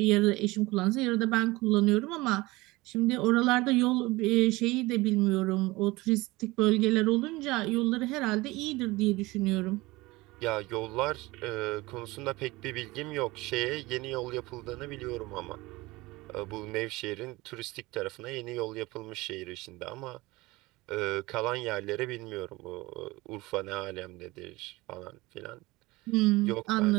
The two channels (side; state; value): left; quieter; 21.2 dB